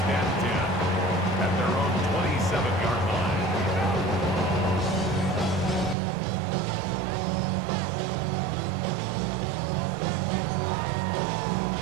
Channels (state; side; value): drops out; left; at 6.0 s